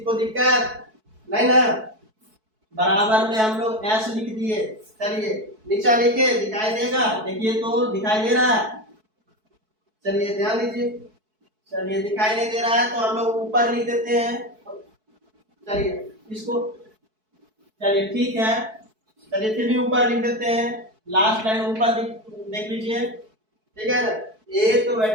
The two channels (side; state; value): left; late; 4.6 ms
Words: को दिक्कत नहीं ना? बराबर में हम लोग s लिख दिए। चलिए नीचा लिखे, दिखाई देगा? देखिए तो दिखाई दे रहा है? चलिए ध्यान दीजिए, चलिए दिखाई नहीं दे रहा है तो हम लोग ऊपर लिख देते हैं। चलिए इसको, चलिए ठीक है, चलिए फिर भी ऊपर लिख देते हैं, लास्ट लाइन ऊपर देख लीजिए, ठीक है ना? 1/,